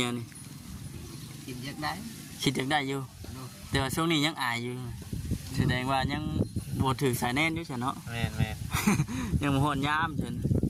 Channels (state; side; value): identical; both; correlation 1.00